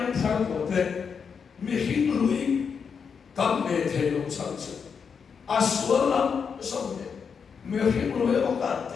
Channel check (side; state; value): right; quieter; 6.3 dB